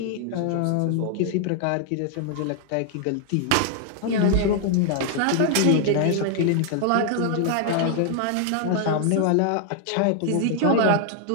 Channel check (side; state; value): both; different; correlation 0.00